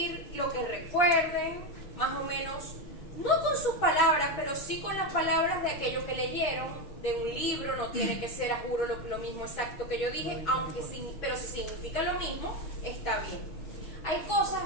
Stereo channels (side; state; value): right; late; 6.1 ms